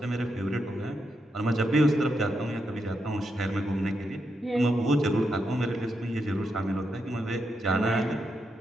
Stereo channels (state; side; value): normal; both; correlation 0.83